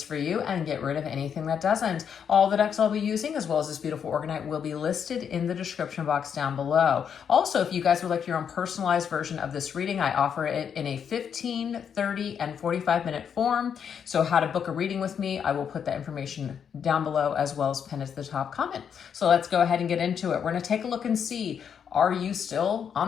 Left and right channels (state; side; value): quieter; right; 7.6 dB